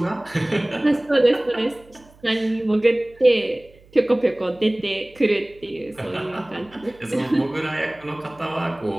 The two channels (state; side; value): noise; right; hum, 27 dB below the sound